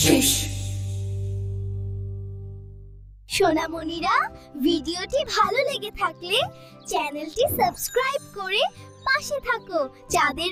শেষ। সোনামণিরা, ভিডিওটি ভালো লেগে থাকলে চ্যানেলটি সাবস্ক্রাইব করে পাশে থাকো। চাঁদের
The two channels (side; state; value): both; identical; correlation 1.00